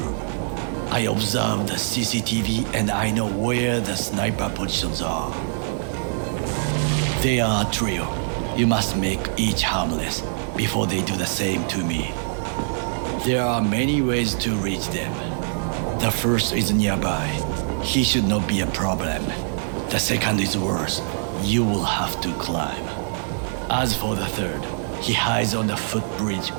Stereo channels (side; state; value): left; silent; digital silence